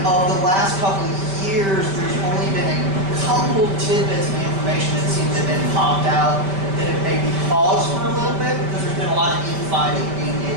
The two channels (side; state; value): left; late; 5.1 ms